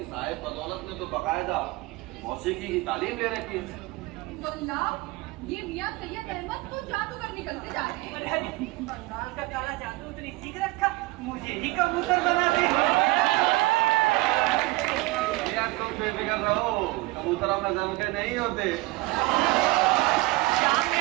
साहिब बदौलत ने तो बाकायदा मौसीकी की तालीम ले रखी है। वल्ला, ये मियां सैयद अहमद तो जादूगर निकलते जा रहे हैं। अरे बंगाल का काला जादू उतनी सीख रखा, मुझे ही कबूतर बना दे। यार तुम बेफिक्र रहो, कबूतर अपने जम के नहीं होते।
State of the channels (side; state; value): left; quieter; 21.2 dB